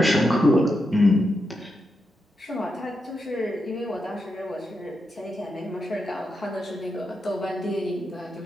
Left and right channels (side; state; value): both; normal; correlation 0.86